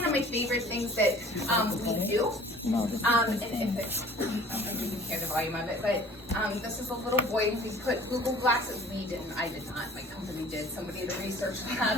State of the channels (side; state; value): both; normal; correlation 0.49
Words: of my favorite things that we do. And if it's, I don't know if you can hear the volume of it, but this is a little boy. We put Google Glasses. We didn't. I did not. My company did. Somebody at the research